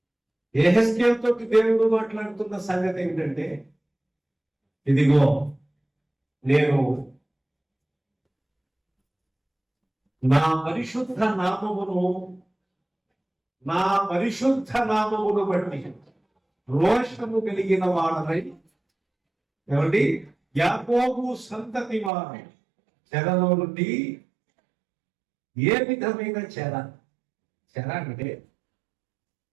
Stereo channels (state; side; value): drops out; left; at 22.1 s